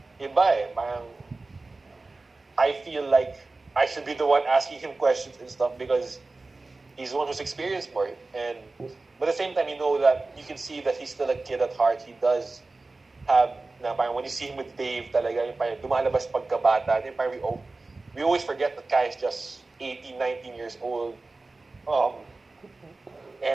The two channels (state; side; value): quieter; left; 3.4 dB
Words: iba eh. Parang I feel like I should be the one asking him questions and stuff because he's the one who's experienced more. But at the same time, that you can see that he's still a kid at heart. He does have, when you see him with Dave, talaga, yung dumalabas pagkabata. We always forget that Kai is just 18, 19 years old.